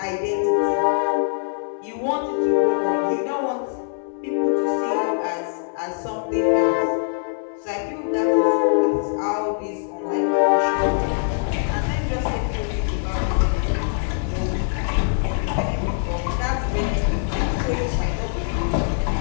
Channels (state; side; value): silent; right; digital silence